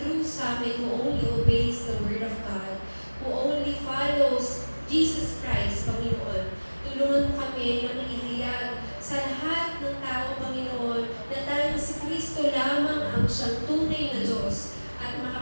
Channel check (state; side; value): inverted; both; correlation -1.00